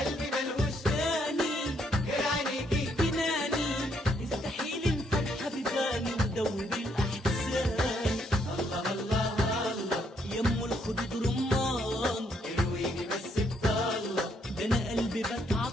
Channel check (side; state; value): both; normal; correlation 0.72